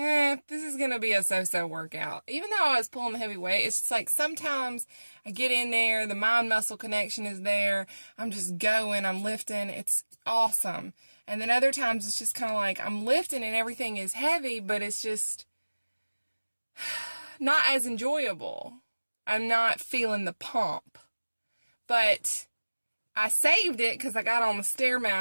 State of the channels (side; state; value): both; inverted; correlation -1.00